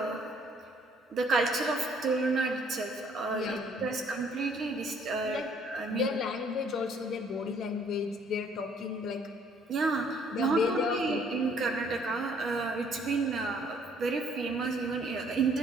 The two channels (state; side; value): normal; both; correlation 0.62